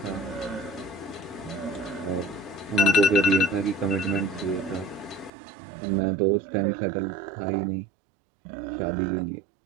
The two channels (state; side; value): drops out; left; at 5.3 s